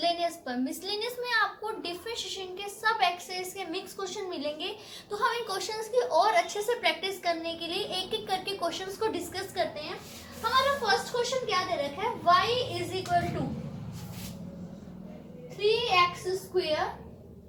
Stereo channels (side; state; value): both; identical; correlation 1.00